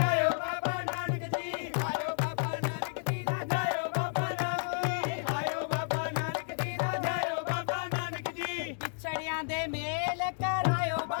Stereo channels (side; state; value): right; silent; digital silence